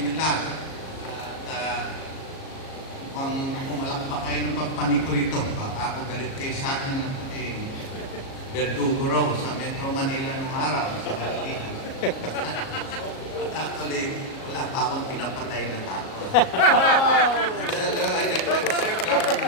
lahat. Kung alam pa kayo ng pagpani ko rito, ako galit kayo sa akin Verdugo raw sa Metro Manila ng araw sa Pilipinas. Actually, wala pa akong pinapatay na tao.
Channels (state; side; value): late; right; 37 ms